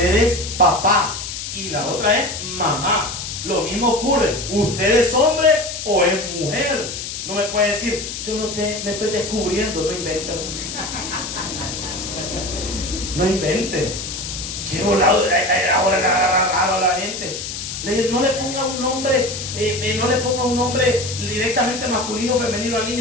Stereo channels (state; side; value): noise; left; hiss, 7 dB below the sound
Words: es papá y la otra es mamá. Lo mismo ocurre. ¿Usted es hombre o es mujer? No me puede decir, yo no sé, me estoy descubriendo. No invente. No invente. Qué volado. Ahora le agarra raro a la gente. No le ponga un nombre, no le ponga un nombre directamente masculino o femenino al